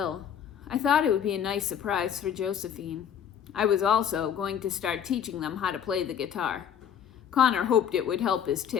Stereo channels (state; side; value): quieter; right; 8.6 dB